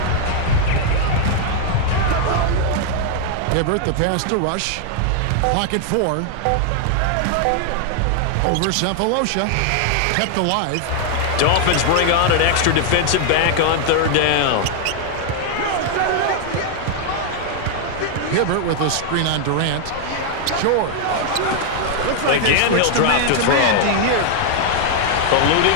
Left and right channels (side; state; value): both; different; correlation 0.00